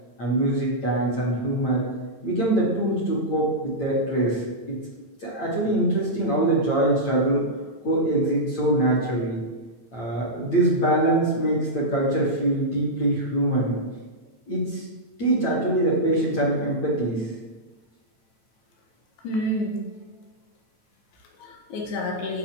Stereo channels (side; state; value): right; late; 8.9 ms